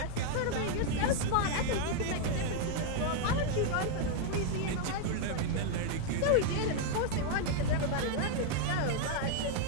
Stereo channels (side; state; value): both; different; correlation 0.00